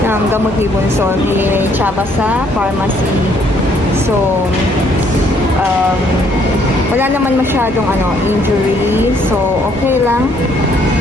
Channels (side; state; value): both; normal; correlation 0.66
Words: ng gamot ni Bunso ni Chaba sa pharmacy. So wala naman masyadong injury. So okay lang.